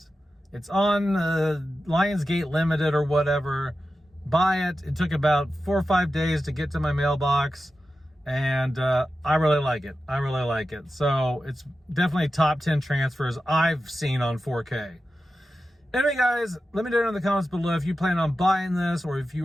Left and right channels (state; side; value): normal; both; correlation 0.92